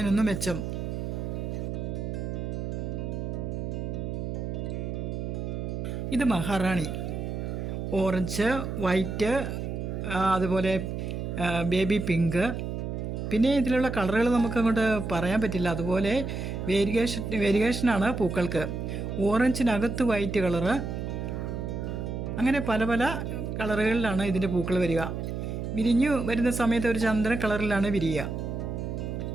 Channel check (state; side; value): noise; right; hum, 4 dB below the sound